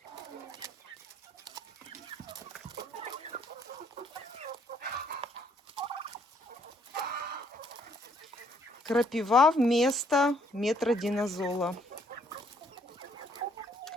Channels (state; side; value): normal; both; correlation 0.67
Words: Крапива вместо метродинозола.